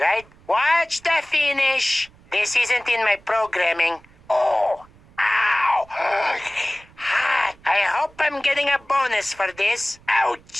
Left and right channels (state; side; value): noise; right; rumble, 27 dB below the sound